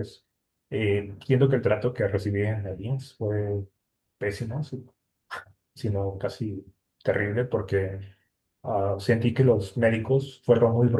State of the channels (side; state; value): both; identical; correlation 1.00